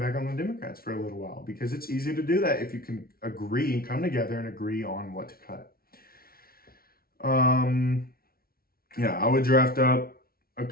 back on the Democrats for a little while, because it's easy to do that if you can agree and come together and agree on what to cut. I would draft up a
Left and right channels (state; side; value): late; right; 0.44 ms